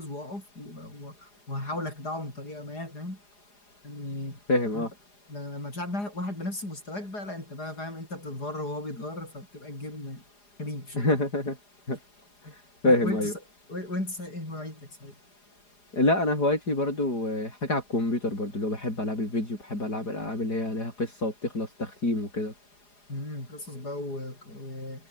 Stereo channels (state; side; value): late; right; 4.9 ms